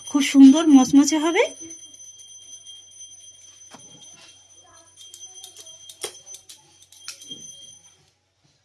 খুব সুন্দর মচমচে হবে।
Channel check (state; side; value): identical; both; correlation 1.00